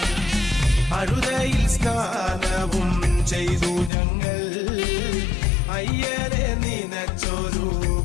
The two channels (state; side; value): drops out; right; at 3.9 s